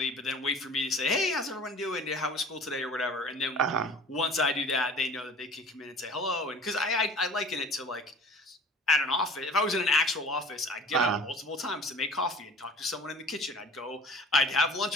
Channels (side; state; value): both; normal; correlation 0.44